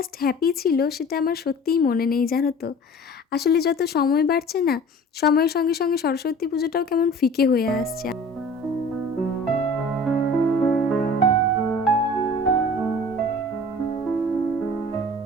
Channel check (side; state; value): both; normal; correlation 0.44